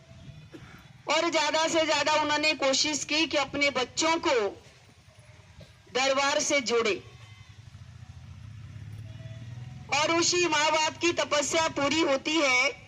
और ज्यादा से ज्यादा उन्होंने कोशिश की कि अपने बच्चों को दरबार से जोड़े, और उसी माँ बाप की तपस्या पूरी होती है।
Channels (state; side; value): identical; both; correlation 1.00